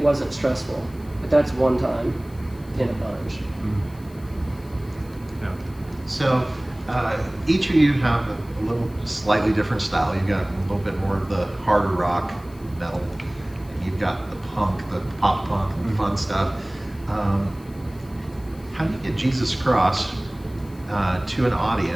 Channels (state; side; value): noise; left; hiss, 26 dB below the sound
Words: wasn't stressful, but that's one time in a bunch. Yeah. So each of you have a little slightly different style. You've got a little bit more of the harder rock, metal, and you've got the punk, the pop punk, and fun stuff. How do you get Jesus Cross to an